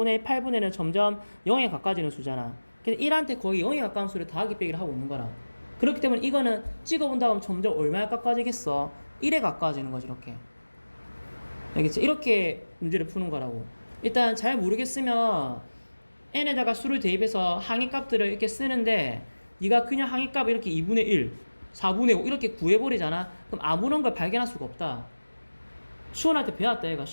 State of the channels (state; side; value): inverted; both; correlation -1.00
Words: 1, 8분의 1은 점점 0에 가까워지는 수잖아. 그래서 1한테 거의 0에 가까운 수를 더하기 빼기를 하고 있는 거라. 그렇기 때문에 이거는 찍어본다 하면 점점 얼마에 가까워지겠어? 1에 가까워지는 거지. 이렇게. 알겠지? 이렇게 문제를 푸는 거라고. 일단 잘 모르겠으면 n에다가 수를 대입해서 항의값들을 이렇게 쓰는데 네가 그냥 항의값 이렇게 2분의 1, 4분의 5 이렇게 구해버리잖아. 그럼 아무런 걸 발견할 수가 없다. 수원한테 배웠다 얘가.